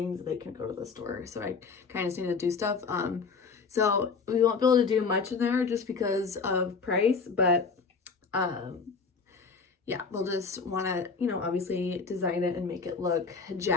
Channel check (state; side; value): quieter; right; 4.9 dB